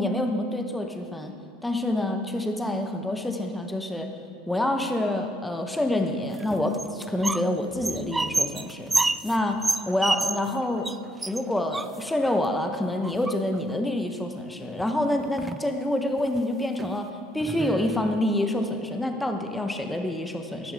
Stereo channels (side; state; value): both; normal; correlation 0.75